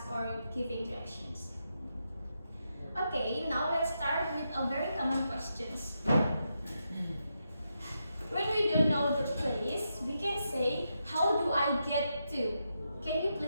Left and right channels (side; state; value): both; inverted; correlation -0.84